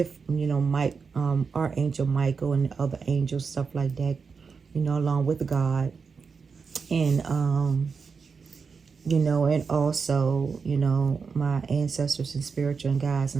you know, Archangel Michael and other angels, stuff like that, you know, along with God. And you know, and also, you know, my ancestors and spiritual guides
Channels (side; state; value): left; quieter; 5.3 dB